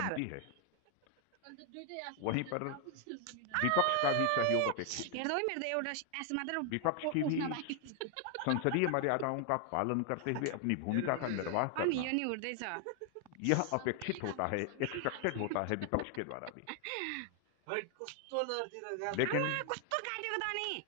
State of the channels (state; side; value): different; both; correlation 0.00